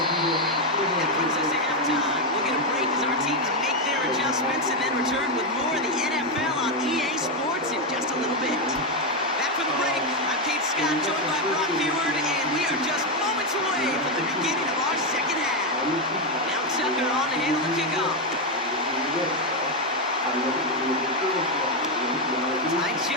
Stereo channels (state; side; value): normal; both; correlation 0.05